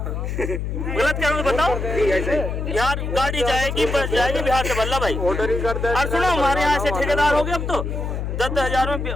गलत क्या हूँ बताओ? बिहार गाड़ी जाएगी, बस जाएगी, बिहार से भर लो भाई। और सुनो, हमारे यहाँ से ठेकेदार हो गए अब तो 10,000 में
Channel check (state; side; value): noise; left; hum, 3 dB below the sound